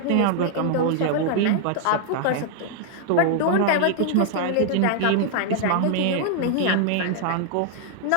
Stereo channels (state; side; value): different; both; correlation 0.00